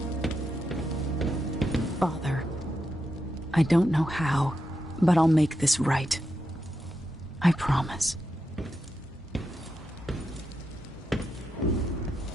Father, I don't know how, but I'll make this right. I promise.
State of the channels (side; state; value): both; normal; correlation 0.86